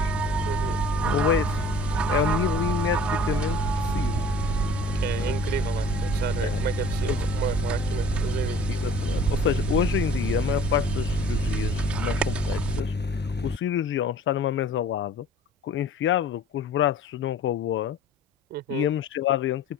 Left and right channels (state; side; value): normal; both; correlation 0.48